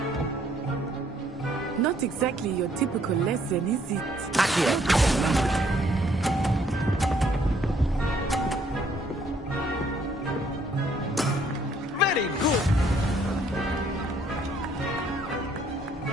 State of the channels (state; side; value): normal; both; correlation 0.65